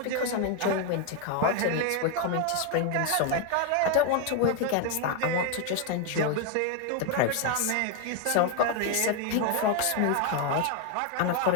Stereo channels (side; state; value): both; different; correlation 0.01